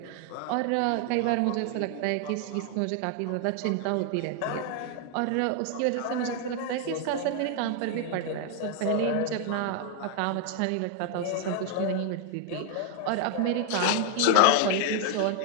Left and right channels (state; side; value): different; both; correlation 0.00